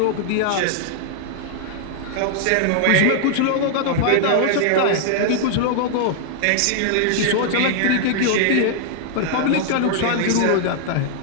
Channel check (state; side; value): different; both; correlation 0.00